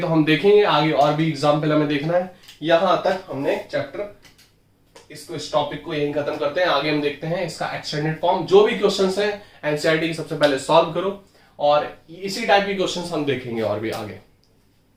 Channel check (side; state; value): both; identical; correlation 1.00